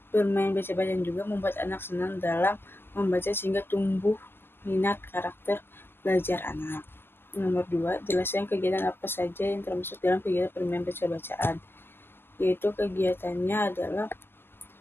Bermain baca-bacaan juga membuat anak senang dalam membaca sehingga tumbuh minat karakter belajar anak. Nomor 2, jelaskan kegiatan apa saja yang termasuk dalam kegiatan bermain baca-bacaan. Yaitu kegiatannya adalah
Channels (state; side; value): late; right; 0.11 ms